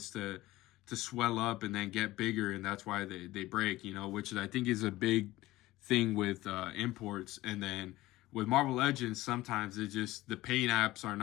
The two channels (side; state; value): right; quieter; 17.7 dB